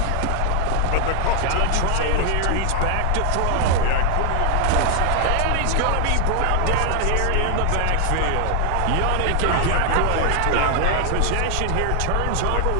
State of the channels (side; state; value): both; different; correlation 0.00